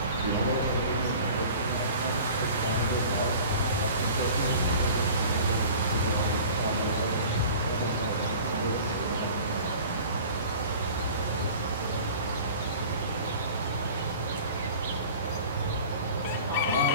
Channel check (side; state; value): both; inverted; correlation -0.42